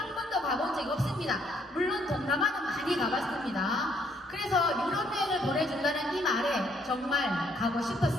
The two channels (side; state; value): both; normal; correlation 0.68